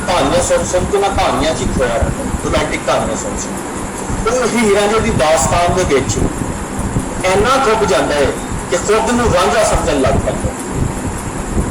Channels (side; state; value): both; identical; correlation 1.00